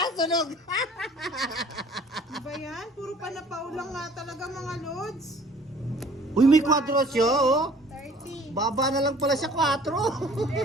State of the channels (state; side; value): normal; both; correlation 0.52